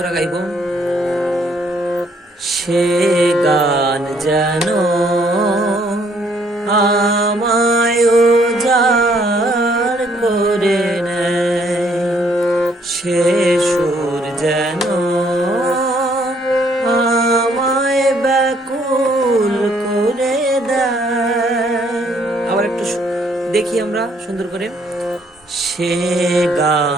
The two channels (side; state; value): both; normal; correlation 0.66